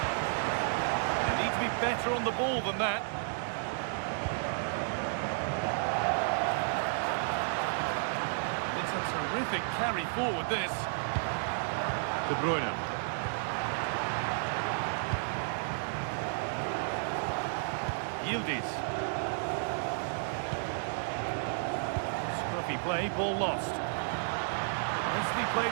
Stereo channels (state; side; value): silent; left; digital silence